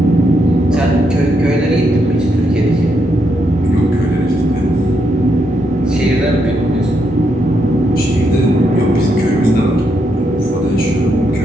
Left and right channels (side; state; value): both; normal; correlation 0.79